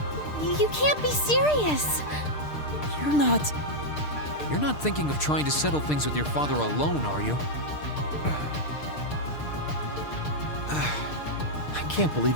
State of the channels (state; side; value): late; right; 6.6 ms